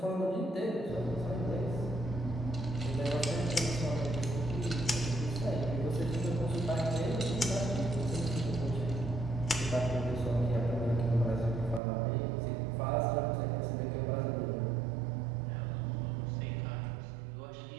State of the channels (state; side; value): drops out; left; at 11.8 s